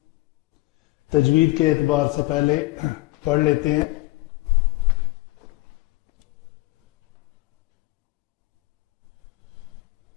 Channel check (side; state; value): right; quieter; 20.4 dB